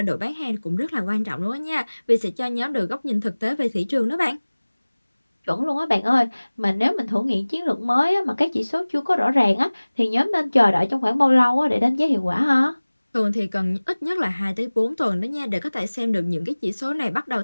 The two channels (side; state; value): both; inverted; correlation -1.00